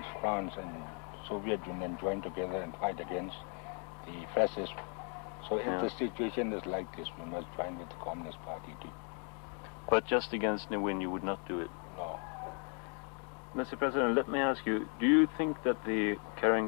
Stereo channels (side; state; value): right; quieter; 39.8 dB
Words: France and Soviet Union joined together and fight against the fascists. So if the situation is like this, we must join with the Communist Party too. But just against Ne Win, you would not do it? No. Mr. President, let me ask you, do you think that the